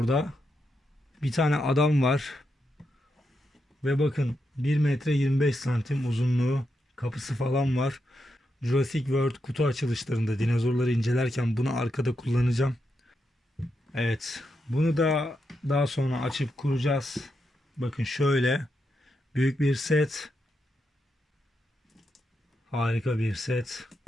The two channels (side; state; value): both; normal; correlation 0.84